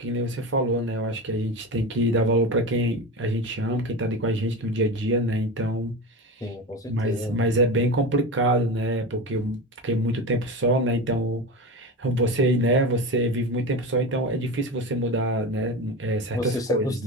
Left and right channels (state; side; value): normal; both; correlation 0.24